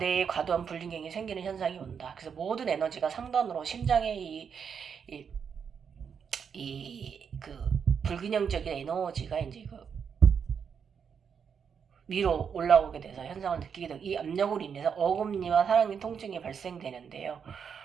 과도한 불균형이 생기는 현상이 온다. 그래서 모든 에너지가 상단으로 심장의 그 불균형적인 에너지가 이제 그 위로 올라오게 돼서 현상을 느끼게 되고 이 압력으로 인해서 어금니와 하랑니 통증이 발생되는데요.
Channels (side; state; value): left; quieter; 6.9 dB